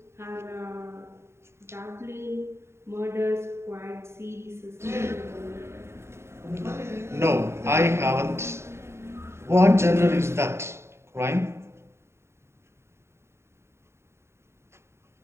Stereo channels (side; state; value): left; late; 0.13 ms